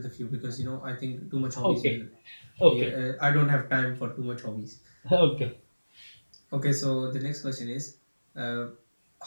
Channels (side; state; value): both; inverted; correlation -1.00